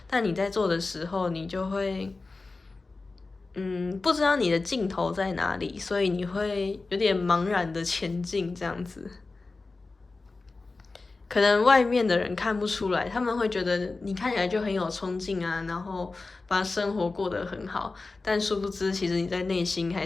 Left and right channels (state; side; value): quieter; right; 3.7 dB